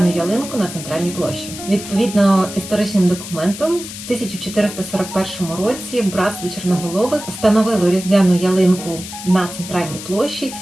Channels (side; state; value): left; noise; hiss, 11 dB below the sound